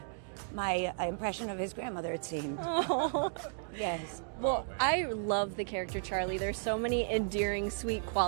impression of his grandmother, it seemed. Yes. Oh, man. I love the character Charlie. There's so many endearing, sweet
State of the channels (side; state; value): left; silent; digital silence